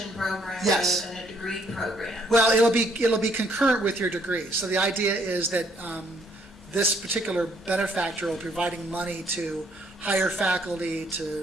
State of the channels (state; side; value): normal; both; correlation 0.67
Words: program Yes. rather than a degree program. Well, it'll be concurrent with your degree. So the idea is that this particular benefactor will be providing money to hire faculty,